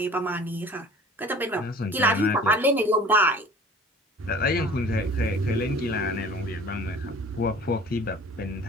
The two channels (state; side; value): normal; both; correlation 0.46